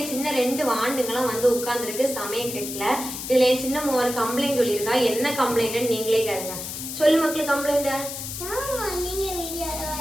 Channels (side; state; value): left; noise; hiss, 7 dB below the sound